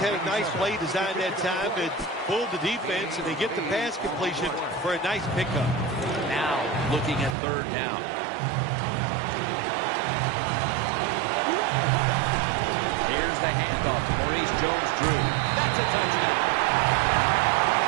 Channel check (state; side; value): drops out; left; at 7.4 s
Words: a nice play designed that time that pulled the defense, and they get the pass completion for a nice pickup. Now looking at third down. Here's the handoff to Maurice Jones-Drew. That's a touchdown.